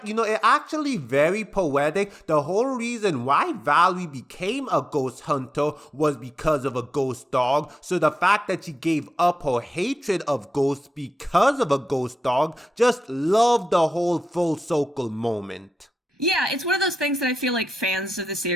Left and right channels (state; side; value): normal; both; correlation 0.92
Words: you know, it actually very poetic. The whole reason why Valerie became a ghost hunter was because of a ghost dog. So the fact that she gave up her hatred of ghosts because of a ghost dog, just love the whole full circle moment. Yeah, it's one of those things that I feel like fans of the